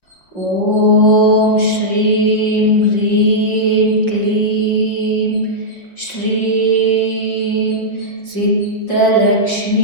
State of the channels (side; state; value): right; late; 5.6 ms